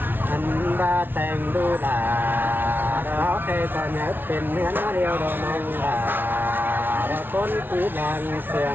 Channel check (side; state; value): left; late; 0.098 ms